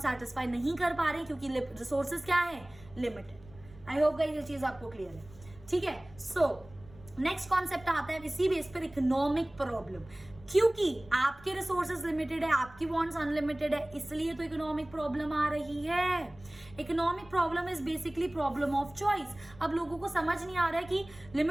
सेटिस्फाई नहीं कर पा रहे क्योंकि रिसोर्सेज क्या है, लिमिटेड। आई होप गाइस ये चीज आपको क्लियर है। ठीक है, सो नेक्स्ट कॉन्सेप्ट आता है इसी बेस पर, इकोनॉमिक प्रॉब्लम। क्योंकि आपके रिसोर्सेज लिमिटेड है, आपकी वांट्स अनलिमिटेड है, इसलिए तो इकोनॉमिक प्रॉब्लम आ रही है। Economic problem is basically problem of choice. अब लोगों को समझ नहीं आ रहा है कि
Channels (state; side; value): noise; right; rumble, 22 dB below the sound